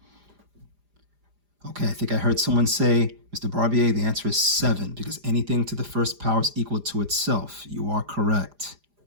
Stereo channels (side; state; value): left; late; 4.9 ms